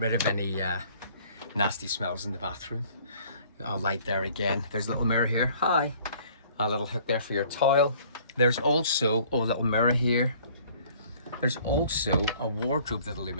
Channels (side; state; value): both; inverted; correlation -0.55